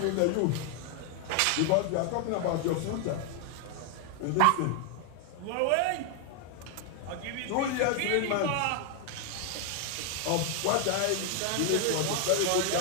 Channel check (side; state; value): both; different; correlation 0.00